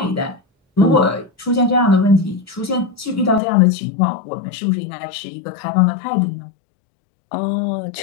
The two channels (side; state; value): right; drops out; at 3.4 s